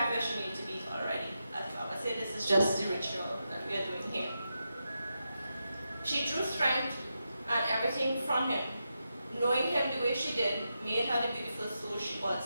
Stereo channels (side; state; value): both; inverted; correlation -0.87